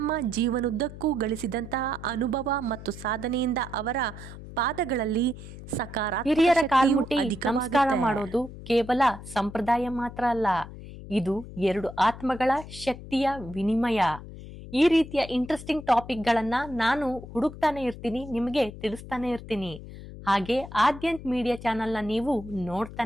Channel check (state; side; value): noise; left; hum, 13 dB below the sound